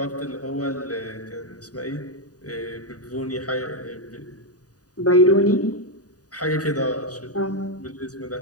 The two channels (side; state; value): right; late; 0.68 ms